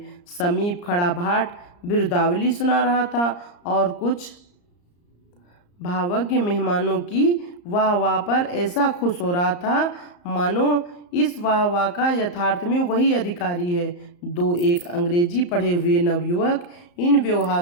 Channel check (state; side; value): late; right; 34 ms